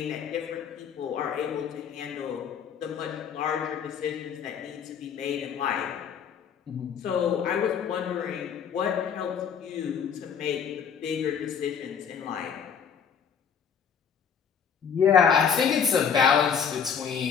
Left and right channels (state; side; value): quieter; right; 7.3 dB